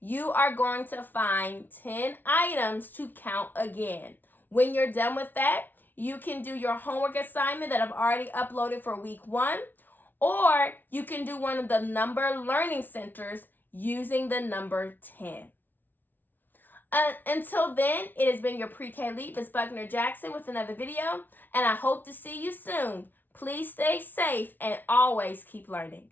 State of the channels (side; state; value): right; late; 0.088 ms